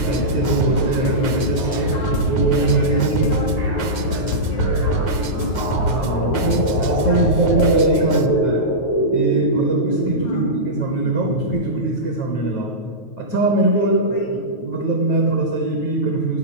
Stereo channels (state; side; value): late; right; 9.4 ms